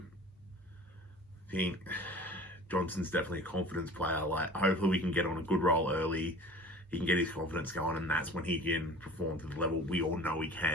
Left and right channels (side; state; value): both; normal; correlation 0.43